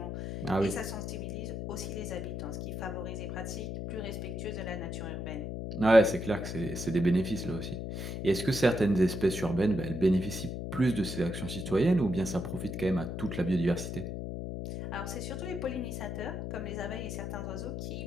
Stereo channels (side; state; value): left; noise; hum, 5 dB below the sound